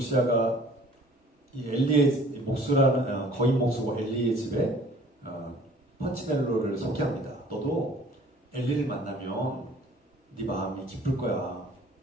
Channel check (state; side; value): normal; both; correlation 0.52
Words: 이 엘리의 목수라는 거인 목수고 엘리의 집에 펀치넬로를 소개합니다. 너도 엘리를 만나면 네 마음이 기쁠 거야.